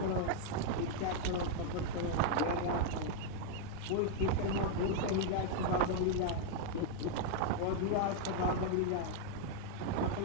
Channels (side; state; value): both; different; correlation 0.00